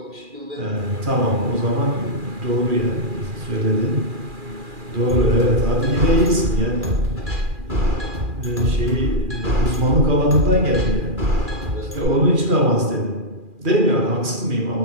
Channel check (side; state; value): left; late; 2.4 ms